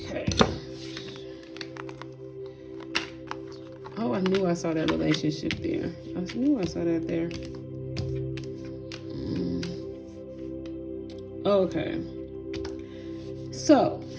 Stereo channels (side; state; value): both; identical; correlation 1.00